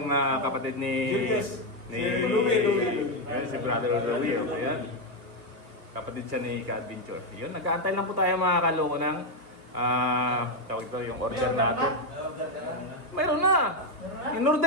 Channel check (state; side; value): late; left; 2.8 ms